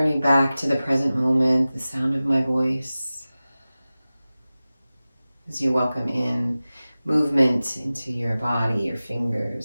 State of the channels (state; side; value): inverted; both; correlation -0.97